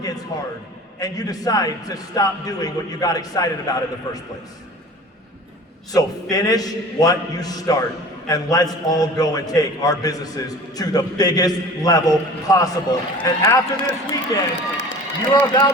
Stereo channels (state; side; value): normal; both; correlation 0.41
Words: gets hard and you decide to stop doing what you got excited about in the first place. So finish what you start. And let's all go and take our businesses to the biggest level possible. And after this weekend, you are